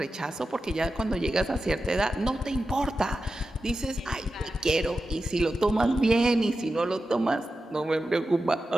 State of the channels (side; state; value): both; normal; correlation 0.92